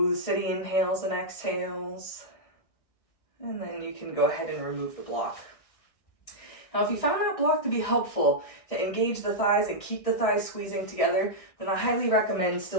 steady inhales and exhales. And then you can go ahead and remove the block. Now, if you found that block to be helpful to engage the thighs and keep the thighs squeezing together, then I highly recommend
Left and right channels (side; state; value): right; late; 1.6 ms